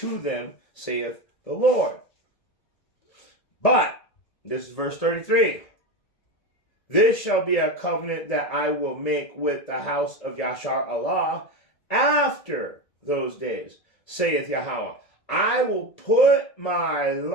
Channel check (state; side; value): late; right; 1.8 ms